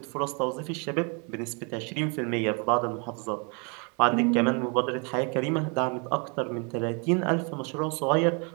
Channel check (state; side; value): quieter; left; 34.8 dB